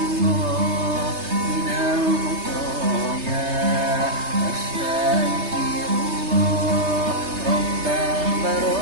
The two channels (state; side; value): late; left; 3.3 ms